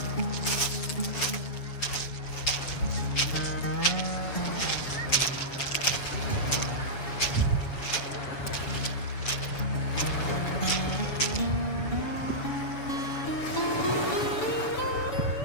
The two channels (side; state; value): right; late; 7.2 ms